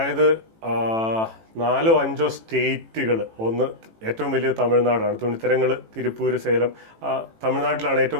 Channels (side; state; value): left; late; 18 ms